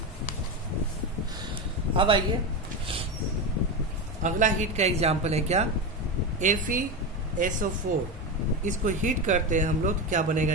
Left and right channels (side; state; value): both; normal; correlation 0.16